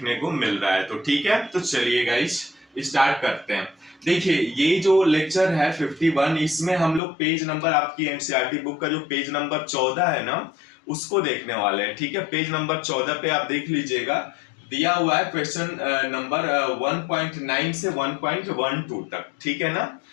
को मिल रहा है तो। ठीक है, तो चलिए गाइस स्टार्ट करते हैं। देखिए ये जो लेक्चर है 51 इसमें हम लोग पेज नंबर आपकी एनसीईआरटी बुक का जो पेज नंबर 14 है ना उसको देखने वाले हैं। ठीक है, पेज नंबर 14 पे आप देख लीजिएगा, दिया हुआ है क्वेश्चन नंबर 1.9 से 1.12 तक। ठीक है ना,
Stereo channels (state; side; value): drops out; right; at 7.0 s